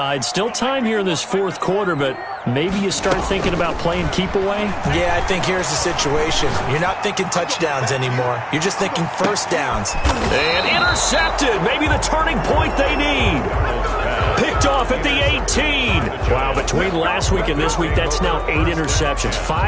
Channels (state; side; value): identical; both; correlation 1.00